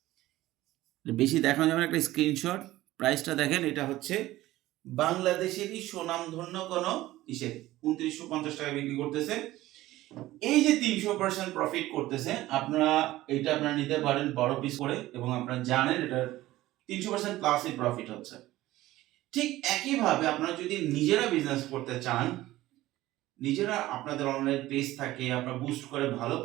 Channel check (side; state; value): left; quieter; 16.4 dB